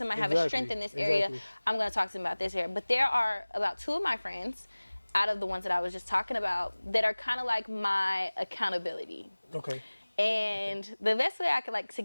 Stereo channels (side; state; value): both; inverted; correlation -1.00